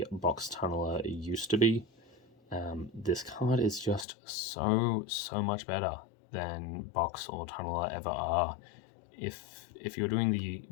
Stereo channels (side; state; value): right; drops out; at 4.0 s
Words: Box Tunneler used to be. This card is just so much better than Box or Tunneler ever are. If you're doing the